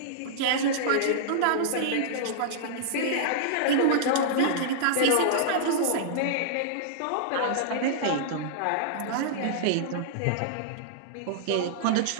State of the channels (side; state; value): both; different; correlation -0.02